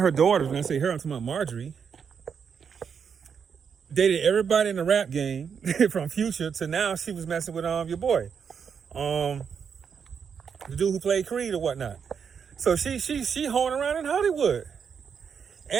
her daughters, when I say her, I'm talking about Marjorie, dated everybody in the rap game from Future to now she was messing with your boy. The dude who played Creed or whatnot. So she hoeing around in Hollywood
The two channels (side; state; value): left; quieter; 6.8 dB